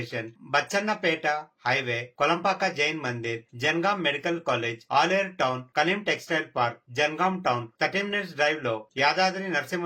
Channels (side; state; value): both; identical; correlation 1.00